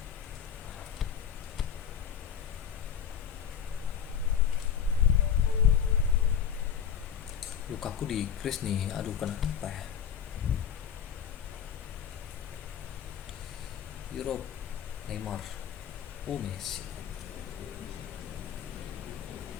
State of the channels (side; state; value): right; quieter; 8.4 dB